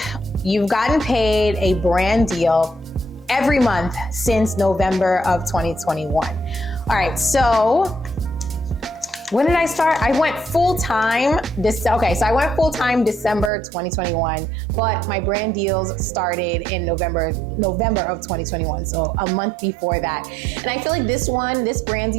you've gotten paid a brand deal every month since November of 2021. All right, so when did I start? I went full-time I went full-time December 2021, but my brand deals started in November of 2021, so a month before that. And I feel like this brand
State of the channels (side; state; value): left; drops out; at 13.5 s